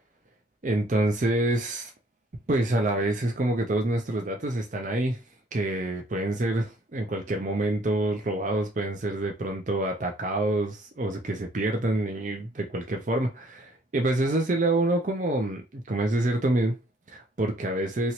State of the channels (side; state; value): both; normal; correlation 0.61